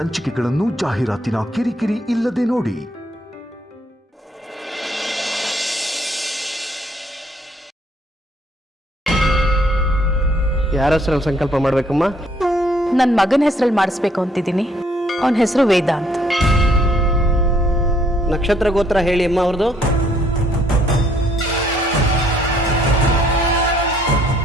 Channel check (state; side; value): normal; both; correlation 0.66